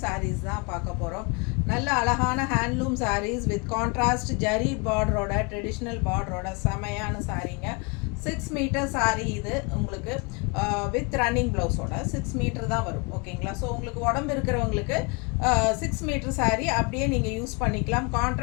சாரீஸ் தான் பார்க்க போகிறோம். நல்ல அழகான handloom sarees with contrast zari பார்டரோட, ட்ரெடிஷ்னல் பார்டரோட செமையான சாரீங்க. 6 மீட்டர் சாரீ இது உங்களுக்கு வித் ரன்னிங் ப்ளவுஸோட 6 மீட்டர் தான் வரும். ஓகேங்களா? ஸோ உங்களுக்கு உடம்பு இருக்கிறவங்களுக்கு 6 மீட்டர் சாரீ அப்படியே நீங்கள் யூஸ் பண்ணிக்கலாம்.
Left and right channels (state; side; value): quieter; right; 31.1 dB